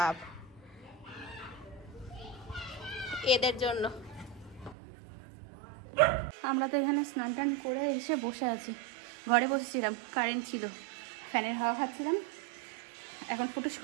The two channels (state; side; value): drops out; left; at 4.8 s